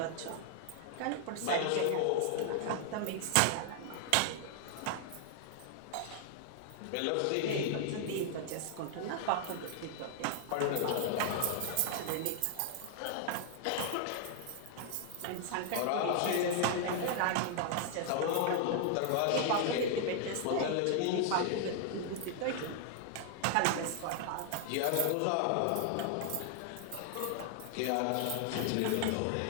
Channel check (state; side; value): different; both; correlation 0.00